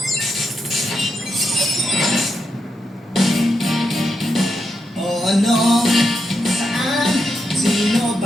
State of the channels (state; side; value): normal; both; correlation 0.84